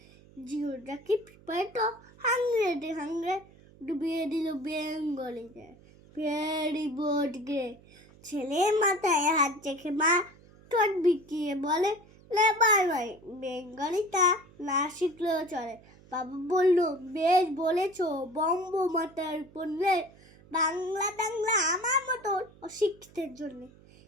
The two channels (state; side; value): noise; right; hum, 25 dB below the sound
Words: Geography paper to 100 ডুবিয়ে দিল বেঙ্গলিতে। ভেরি বোর্ড গে ছেলে মাথায় হাত রেখে মা ঠোঁট বিকিয়ে বলে লেবার ভাই বেঙ্গলিটা না শিখলেও চলে। বাবা বলল বেশ বলেছ, বম্ব মাথার পড়লে বাংলা টাংলা আমার মতো অশিক্ষিতের জন্য।